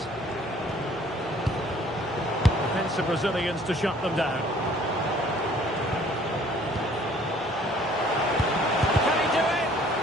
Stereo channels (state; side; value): normal; both; correlation 0.56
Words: The Brazilians to shut them down. Can he do it?